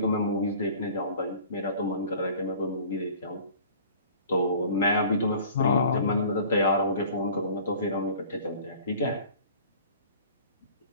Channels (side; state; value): both; inverted; correlation -0.47